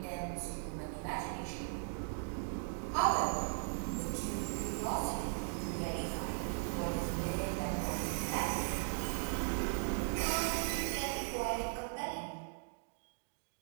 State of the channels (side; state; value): left; silent; digital silence